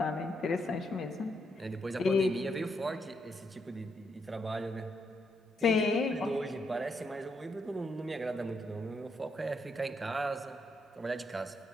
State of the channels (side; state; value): both; normal; correlation 0.78